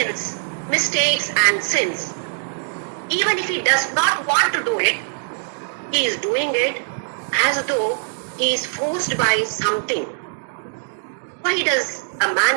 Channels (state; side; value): silent; left; digital silence